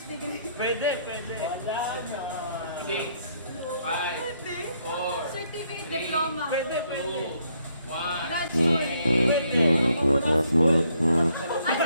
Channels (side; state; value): both; inverted; correlation -0.71